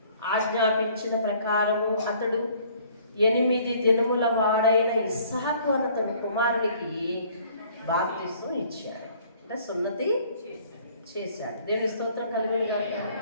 ఆజ్ఞాపించిన ప్రకారము అతడు 8 దినముల వాడైన ఇస్సాకు అన్న తన కుమారునికి బాప్తిసం ఇచ్చాడు. అంటే సున్నతి చేశాడు. దేవుని స్తోత్రం కలుగును గాక.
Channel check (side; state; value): both; inverted; correlation -0.57